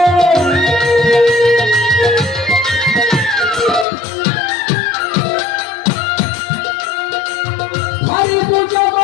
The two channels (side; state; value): right; drops out; at 3.9 s